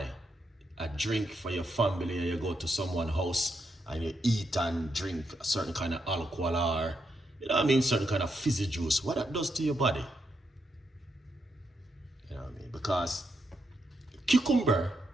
a drink for your family, or you go to someone's house and you eat and drink a certain kind of alcohol, or you know what I mean, certain kind of fizzy juice, what that does to your body? You know what I mean? Because cucumber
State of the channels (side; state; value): both; normal; correlation 0.81